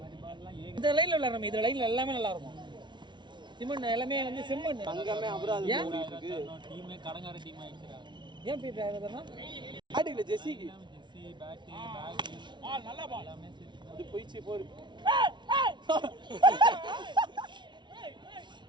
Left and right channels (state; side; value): late; left; 0.23 ms